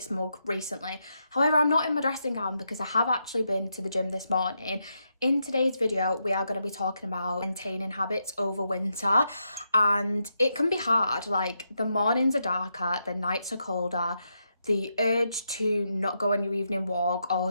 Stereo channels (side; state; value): both; inverted; correlation -0.82